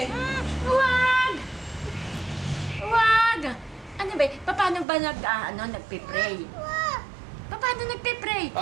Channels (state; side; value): drops out; left; at 4.9 s